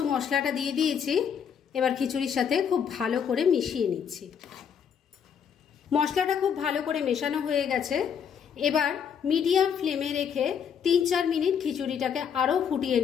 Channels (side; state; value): right; quieter; 7.6 dB